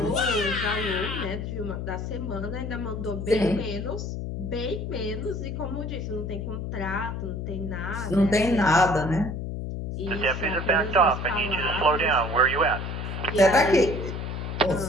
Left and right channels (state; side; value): noise; left; hum, 5 dB below the sound